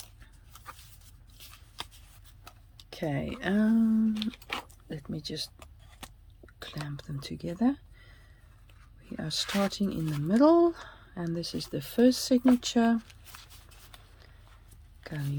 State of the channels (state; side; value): identical; both; correlation 1.00